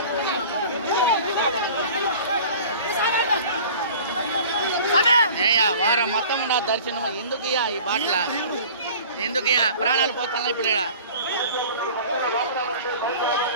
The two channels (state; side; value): inverted; both; correlation -0.44